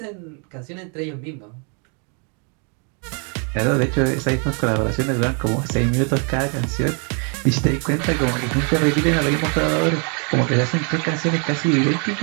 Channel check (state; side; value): quieter; left; 38.0 dB